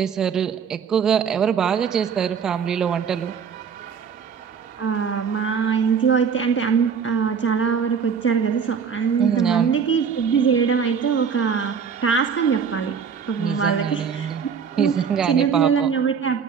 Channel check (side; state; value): left; quieter; 6.6 dB